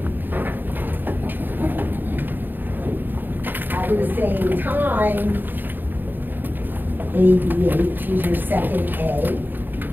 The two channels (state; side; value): late; left; 0.092 ms